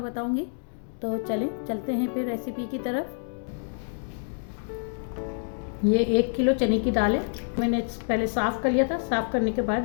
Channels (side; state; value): right; silent; digital silence